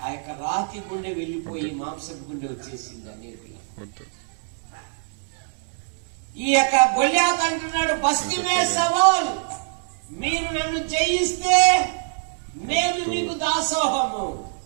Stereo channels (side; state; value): left; silent; 63 dB below the other